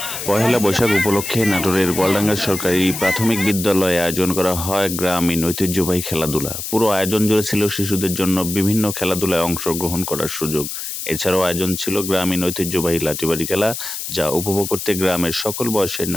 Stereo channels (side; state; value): left; noise; hiss, 6 dB below the sound